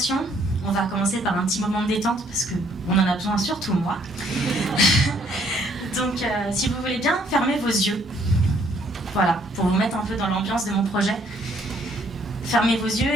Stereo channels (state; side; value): normal; both; correlation 0.65